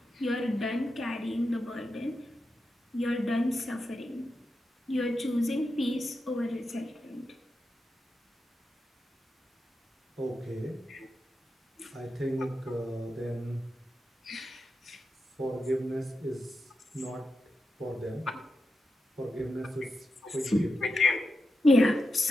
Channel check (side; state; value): both; normal; correlation 0.88